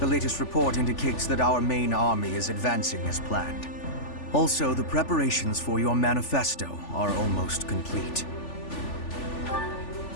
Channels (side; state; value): right; late; 3.4 ms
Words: latest report indicates that our main army is advancing as planned. Also, the preparations for your manifesto are almost complete.